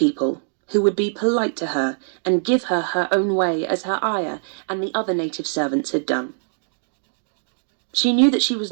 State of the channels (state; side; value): silent; left; digital silence